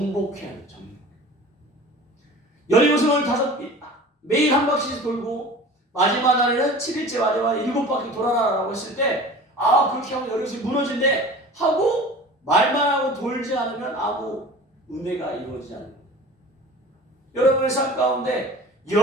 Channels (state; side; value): normal; both; correlation 0.40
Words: 돼요. 여리고성을 매일 한 바퀴씩 돌고 마지막 날에는 7일째 마지막 날에 7바퀴 돌아라라고 했을 때, 그렇게 하면 여리고성이 무너진대 하고 말만 하고 돌지 않으면 아무 은혜가 이루어지지 않는 거예요. 여러분의 삶 가운데